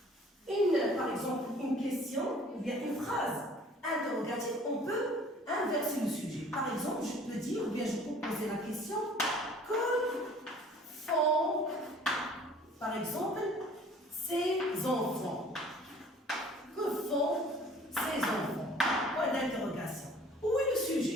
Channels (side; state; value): both; normal; correlation 0.51